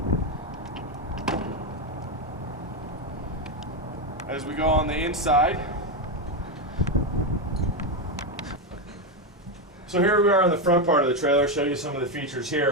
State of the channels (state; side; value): normal; both; correlation 0.09